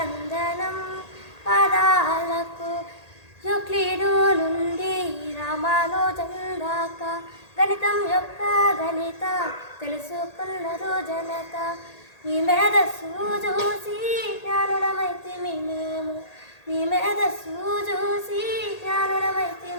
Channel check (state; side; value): late; right; 1.8 ms